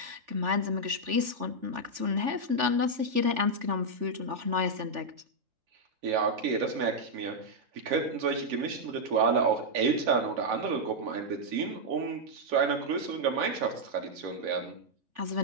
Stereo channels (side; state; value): left; late; 3.4 ms